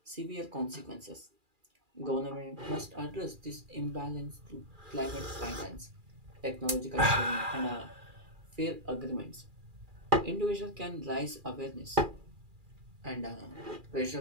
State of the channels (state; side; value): late; left; 2.4 ms